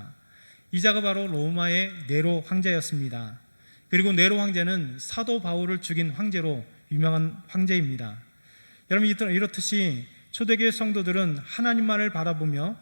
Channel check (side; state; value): both; inverted; correlation -1.00